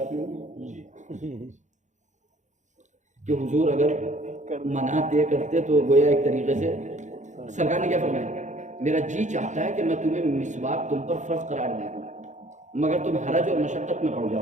نہیں. کہ حضور اگر منع طے کرتے تو گویا ایک طریقے سے سرکار نے کیا فرمایا, میرا جی چاہتا ہے کہ میں تمہیں مسواک تم پر فرض قرار دے دوں, مگر تم حرج اور مشقت میں پڑ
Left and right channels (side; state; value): left; late; 0.35 ms